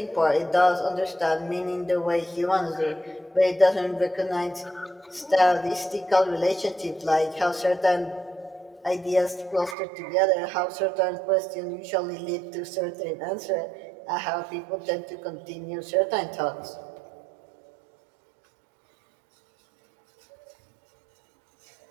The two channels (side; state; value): left; drops out; at 9.8 s